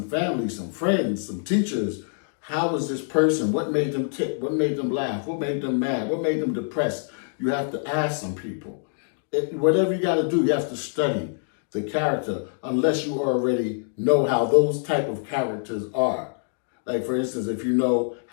family, some friends, some teachers. How was this person? What made them tick? What made them laugh? What made them mad? What made them depressed? You have to ask some people. Whatever you got to do, you have to study the character unless you already know how those type of characters are. Like, for instance, if you know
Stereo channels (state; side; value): silent; right; digital silence